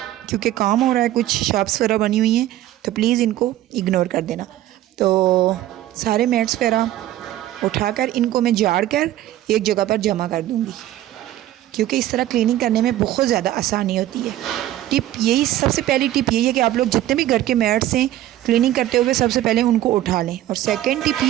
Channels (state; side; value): quieter; left; 13.9 dB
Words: क्योंकि काम हो रहा है, कुछ शॉप्स वगैरह बनी हुई हैं, तो प्लीज़ इनको इग्नोर कर देना। तो सारे मैट्स वगैरह उठाकर इनको मैं झाड़ कर एक जगह पर जमा कर दूँगी, क्योंकि इस तरह क्लीनिंग करने में बहुत ज़्यादा आसानी होती है। सबसे पहली टिप यही है कि आप लोग जितने भी घर के मैट्स हैं क्लीनिंग करते हुए सबसे पहले उनको उठा लें। और सेकेंड टिप